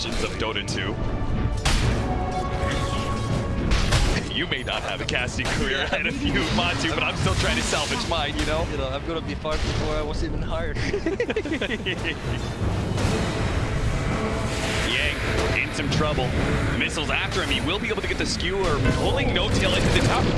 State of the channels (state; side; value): identical; both; correlation 1.00